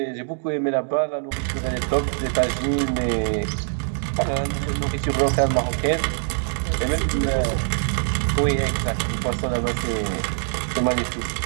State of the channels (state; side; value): silent; left; 63 dB below the other